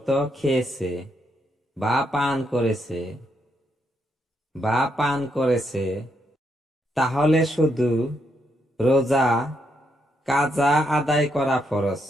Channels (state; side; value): normal; both; correlation 0.78